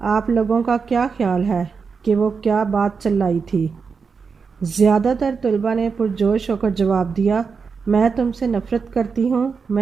لوگوں کا کیا خیال ہے کہ وہ کیا بات چلائی تھی؟ زیادہ تر طلباء نے پرجوش ہو کر جواب دیا، میں تم سے نفرت کرتی ہوں،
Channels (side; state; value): left; quieter; 5.4 dB